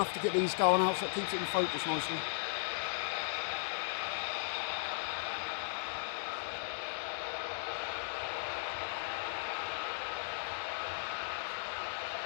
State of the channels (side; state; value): right; silent; digital silence